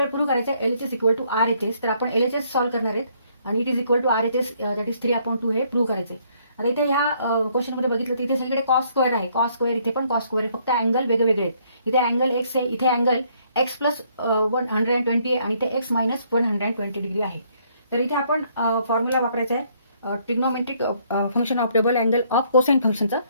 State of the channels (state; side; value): inverted; both; correlation -0.67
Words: prove करायचं आहे LHS equal to RHS. तर आपण LHS सॉल्व्ह करणार आहेत आणि it is equal to RHS that is 3/2 हे प्रूव्ह करायचं आहे. आता इथे ह्या क्वेश्चन मध्ये बघितलं तर इथे सगळीकडे कॉस स्क्वेअर आहे. कॉस स्क्वेअर इथे पण कॉस स्क्वेअर आहे, फक्त अँगल वेगवेगळे आहेत. इथे अँगल एक्स आहे, इथे अँगल एक्स प्लस 120 आहे आणि इथे एक्स मायनस 120 डिग्री आहे. तर इथे आपण फॉर्म्युला वापरायचा आहे trigonometric function of double angle of cosine फंक्शनचा.